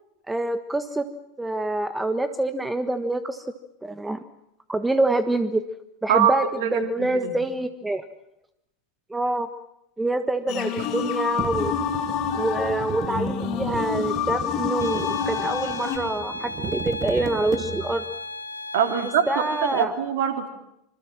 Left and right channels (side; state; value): both; normal; correlation 0.49